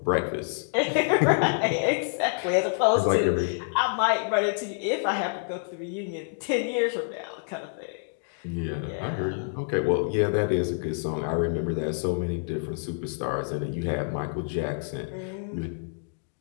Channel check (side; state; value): right; silent; digital silence